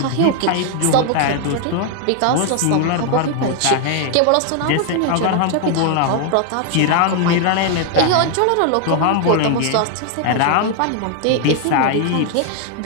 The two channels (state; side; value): different; both; correlation 0.00